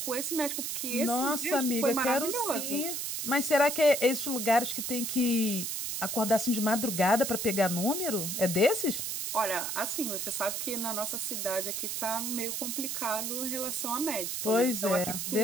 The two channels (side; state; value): right; noise; hiss, 3 dB below the sound